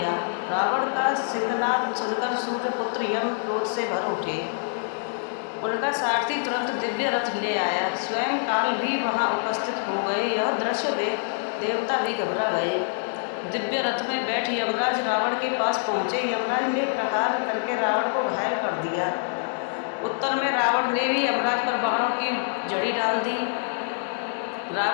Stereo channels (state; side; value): silent; right; digital silence